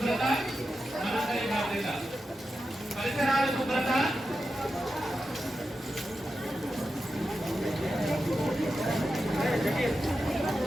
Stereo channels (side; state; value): both; normal; correlation 0.90